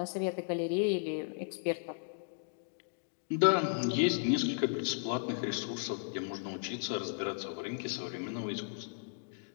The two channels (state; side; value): silent; right; digital silence